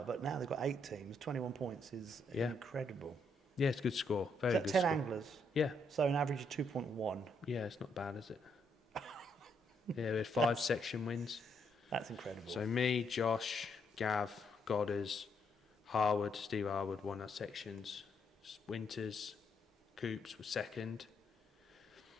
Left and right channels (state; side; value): normal; both; correlation 0.75